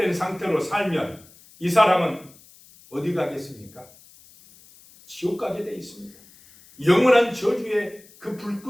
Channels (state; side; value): noise; left; hiss, 25 dB below the sound